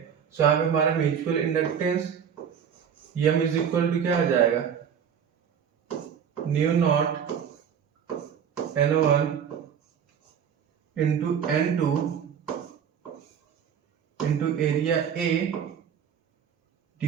सो यहाँ पे हमारा mutual inductance M is equal to क्या आ जाएगा, mu naught N1 into N2 into area A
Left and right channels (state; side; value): quieter; left; 7.9 dB